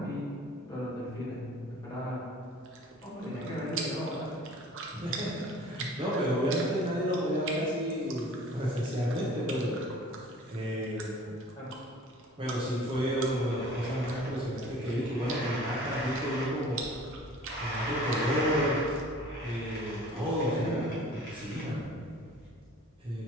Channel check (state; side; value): normal; both; correlation 0.47